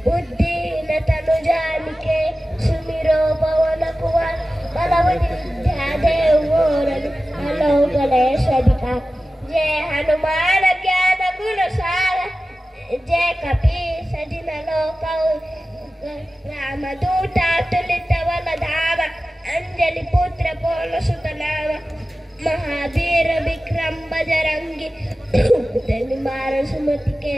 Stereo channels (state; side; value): normal; both; correlation 0.95